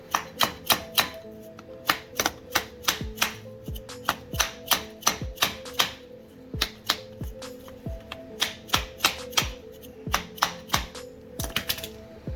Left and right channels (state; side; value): identical; both; correlation 1.00